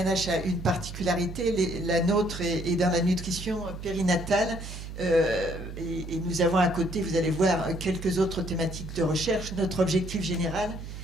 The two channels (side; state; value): right; noise; hum, 10 dB below the sound